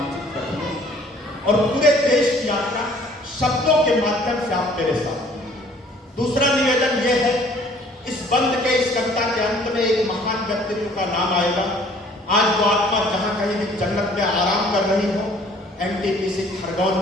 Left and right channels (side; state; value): both; normal; correlation 0.56